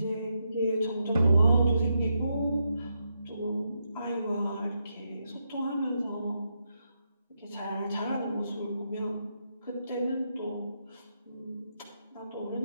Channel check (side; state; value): both; inverted; correlation -0.82